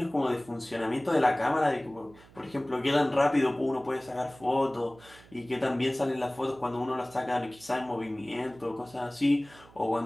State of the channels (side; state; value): right; noise; hum, 24 dB below the sound